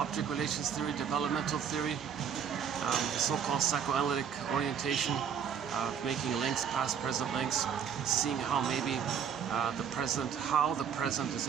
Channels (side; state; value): left; quieter; 7.7 dB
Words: relations theory, developmental theory, the so-called psychoanalytic orientation of making links, past-present links, seeing how maybe the present is